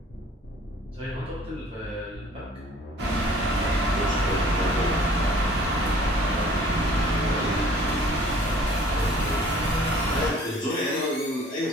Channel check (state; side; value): normal; both; correlation 0.53